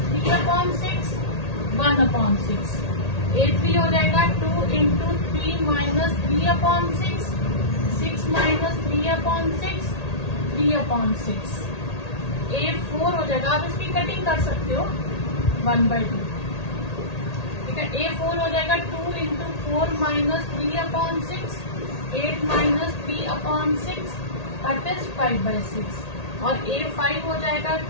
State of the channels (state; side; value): late; right; 1.8 ms